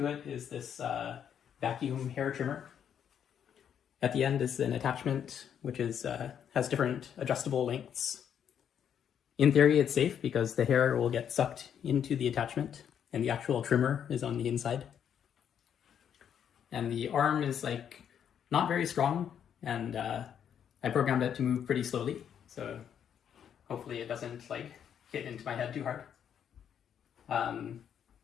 it is this vacuum hair trimmer. At the end is an attachment which has different adjustable lengths. In theory it's safe because the hair will get sucked into the attachment and the actual trimmer is on the inside. And the arm is not very strong, and I programmed it to move pretty slowly, so hopefully it doesn't hit into my head too hard.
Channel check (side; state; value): right; quieter; 8.7 dB